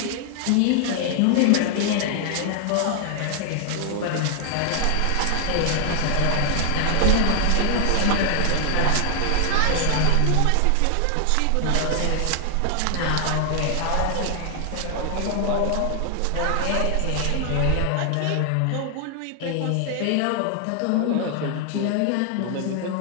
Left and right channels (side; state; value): both; different; correlation 0.00